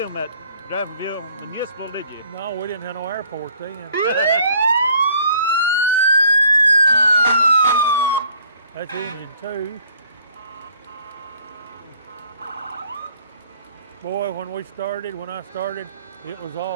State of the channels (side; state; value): both; inverted; correlation -0.58